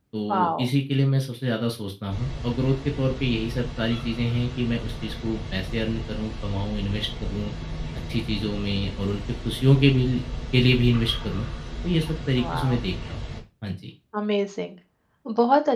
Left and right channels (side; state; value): both; identical; correlation 1.00